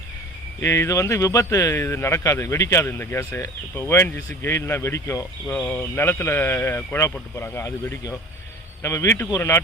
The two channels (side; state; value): both; normal; correlation 0.39